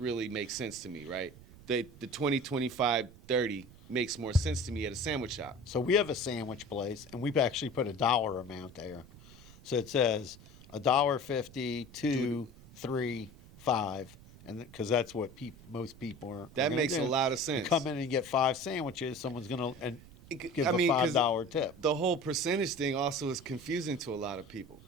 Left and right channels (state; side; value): noise; right; rumble, 20 dB below the sound